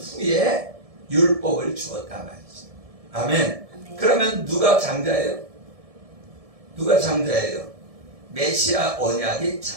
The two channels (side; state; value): left; late; 1.7 ms